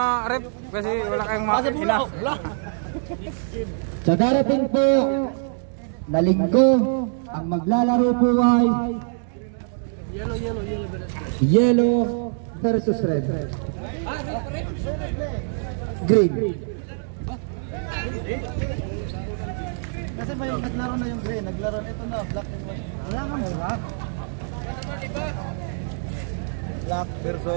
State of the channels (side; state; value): left; silent; digital silence